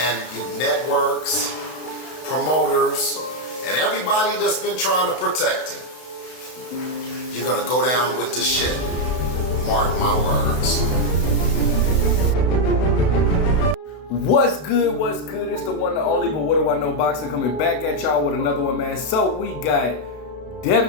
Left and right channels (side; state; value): right; late; 32 ms